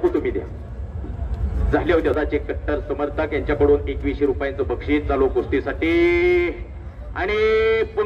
तुम्ही द्या. झाले होते. त्याचे कट्टर समर्थक यांच्याकडून 2100 रुपयांचं बक्षीस चालू कुस्तीसाठी. आणि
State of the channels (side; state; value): both; identical; correlation 1.00